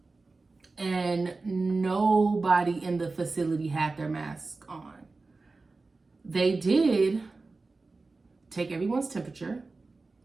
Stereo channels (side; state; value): left; quieter; 3.7 dB